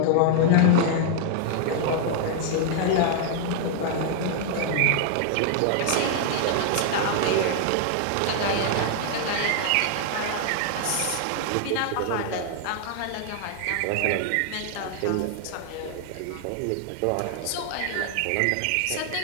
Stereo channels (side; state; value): both; different; correlation 0.00